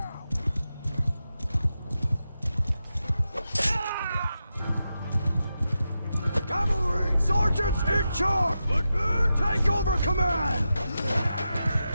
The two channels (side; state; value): both; inverted; correlation -0.89